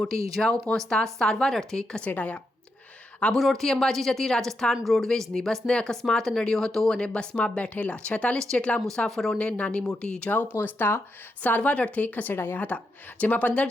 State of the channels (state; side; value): normal; both; correlation 0.84